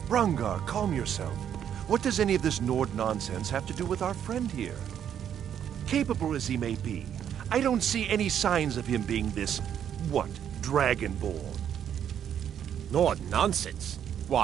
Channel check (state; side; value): quieter; left; 9.3 dB